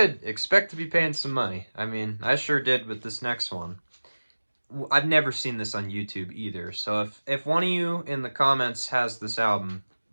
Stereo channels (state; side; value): inverted; both; correlation -1.00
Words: expect to be paying some money. I mean, I sure did with this next one. I've never seen this on YouTube either, so if one of you in the comments has this album,